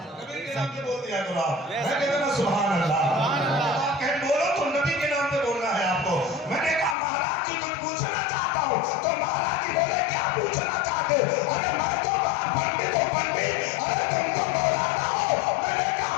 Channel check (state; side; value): drops out; right; at 7.0 s